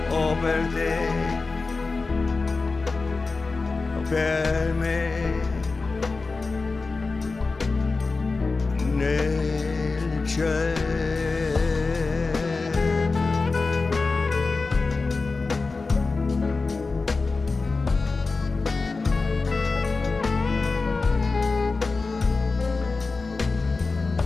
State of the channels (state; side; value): quieter; right; 3.9 dB